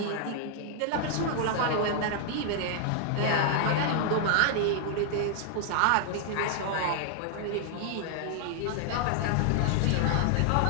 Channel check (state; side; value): different; both; correlation -0.01